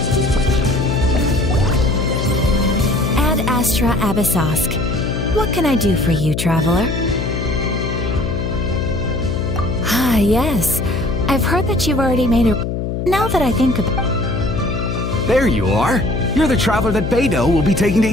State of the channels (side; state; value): left; noise; hum, 3 dB below the sound